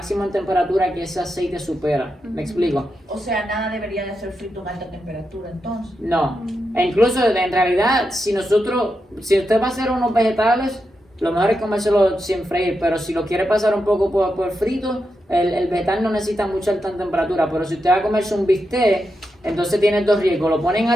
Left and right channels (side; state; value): both; normal; correlation 0.86